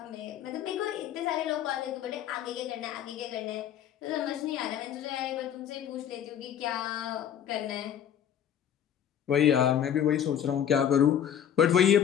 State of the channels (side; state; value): right; quieter; 9.5 dB